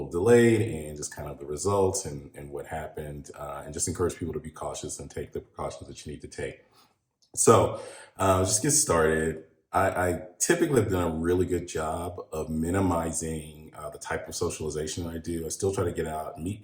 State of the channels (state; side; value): identical; both; correlation 1.00